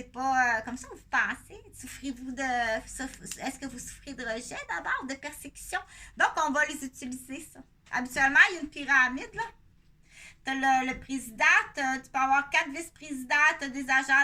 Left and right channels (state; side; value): identical; both; correlation 1.00